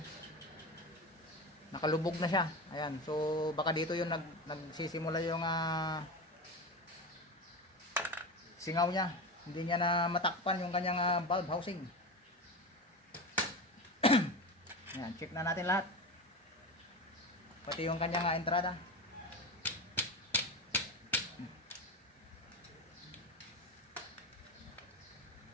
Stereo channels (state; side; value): normal; both; correlation 0.23